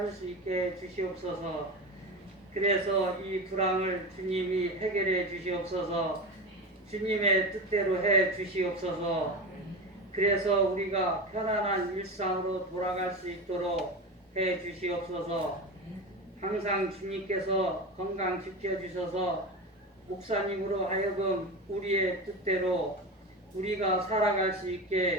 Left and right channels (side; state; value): both; normal; correlation 0.24